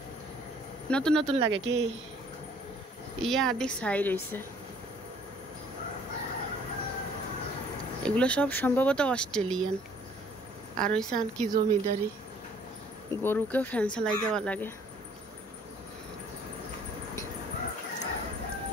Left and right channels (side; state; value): both; normal; correlation 0.58